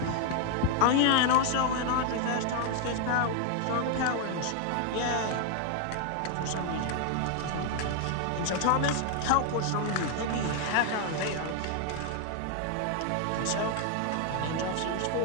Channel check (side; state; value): both; different; correlation 0.01